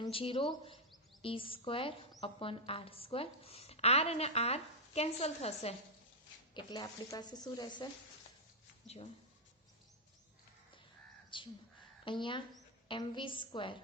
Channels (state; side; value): normal; both; correlation -0.05